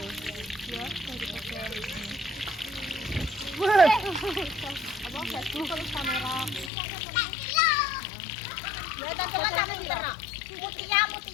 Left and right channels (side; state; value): right; drops out; at 6.7 s